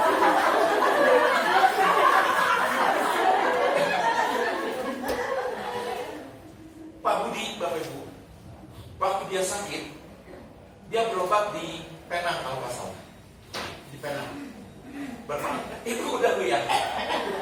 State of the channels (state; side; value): identical; both; correlation 1.00